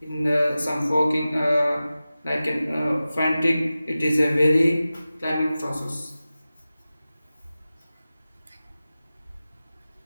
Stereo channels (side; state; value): both; inverted; correlation -0.95